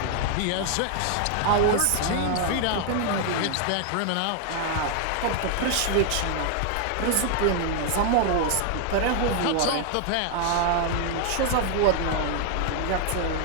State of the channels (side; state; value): both; different; correlation 0.00